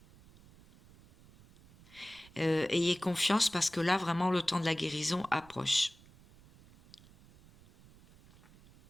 Ayez confiance parce que là, vraiment, le temps de la guérison approche.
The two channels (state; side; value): noise; right; rumble, 25 dB below the sound